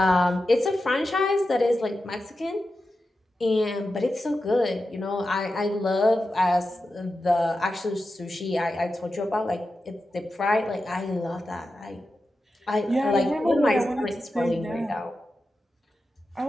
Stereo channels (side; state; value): both; normal; correlation 0.91